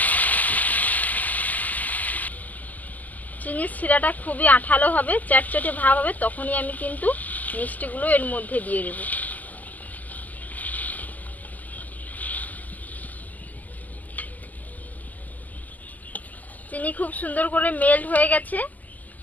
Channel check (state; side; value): late; right; 0.080 ms